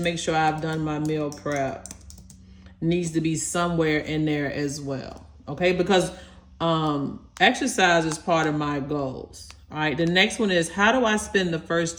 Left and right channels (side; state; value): both; identical; correlation 1.00